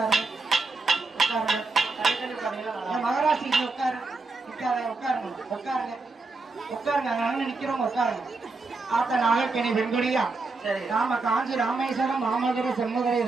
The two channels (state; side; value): quieter; left; 3.7 dB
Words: உட்காருங்க தள்ளி தள்ளி உட்காருங்க. என் மகராசிக்கு உட்காரு உட்காருங்க உட்காருங்க உட்காருங்க உட்காருங்க அங்க நிக்கிறவங்க உட்காருங்க ஆத்த நாகக்கணி வெண்குடியா சரி நாம காஞ்சி ராமேஸ்வரம் மாமதுரை செம்மதுரை